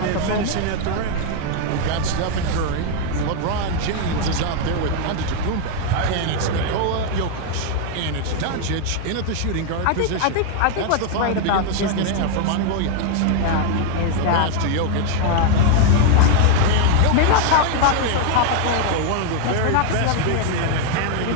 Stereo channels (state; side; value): different; both; correlation 0.00